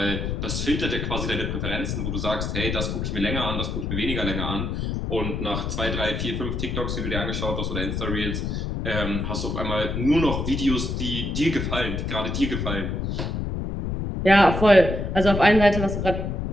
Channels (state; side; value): noise; left; rumble, 2 dB below the sound